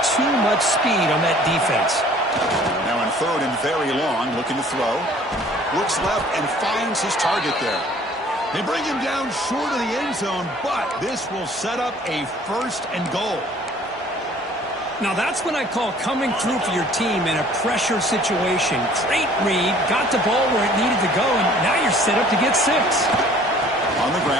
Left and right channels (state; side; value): normal; both; correlation 0.53